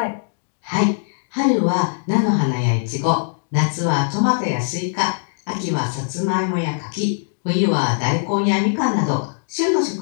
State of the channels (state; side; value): silent; right; digital silence